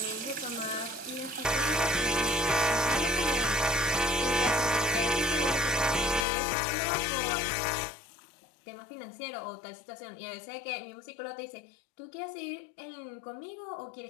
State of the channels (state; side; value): drops out; right; at 6.2 s